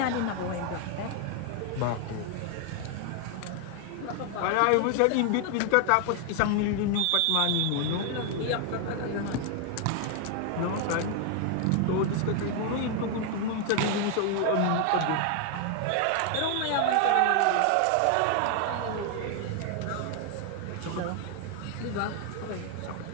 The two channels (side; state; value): both; different; correlation 0.00